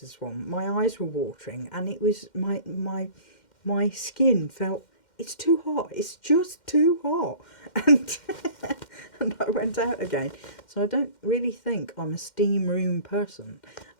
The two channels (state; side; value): late; right; 2.1 ms